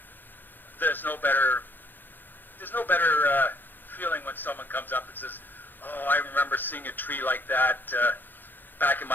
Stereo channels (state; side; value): late; right; 0.091 ms